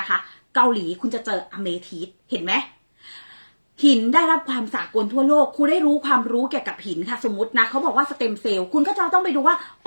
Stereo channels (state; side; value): inverted; both; correlation -1.00